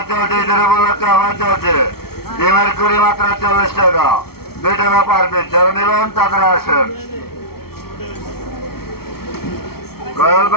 চলছে, ঈদের উপলক্ষে আবার চলছে। ডিমের কুড়ি মাত্র 40 টাকা, 2 টাকা পার পিস, যারা নেবেন তাড়াতাড়ি আসেন। কল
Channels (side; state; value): right; late; 0.95 ms